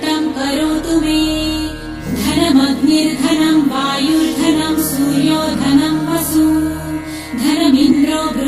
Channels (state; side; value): identical; both; correlation 1.00